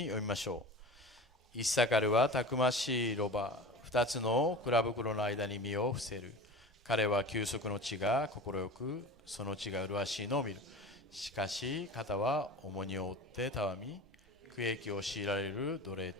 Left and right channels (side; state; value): both; normal; correlation 0.34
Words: 読みましょう。イッサカルはたくましいロバ、2つの蔵袋の間に身を伏せる。彼は休息の地が快く、その地が麗しいのを見る。しかし肩は重荷を負ってたわみ、苦役を強いられる奴隷